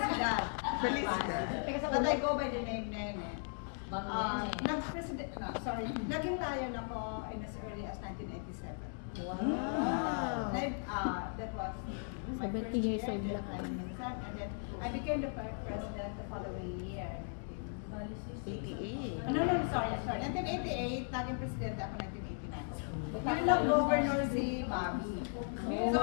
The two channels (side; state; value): right; silent; 53 dB below the other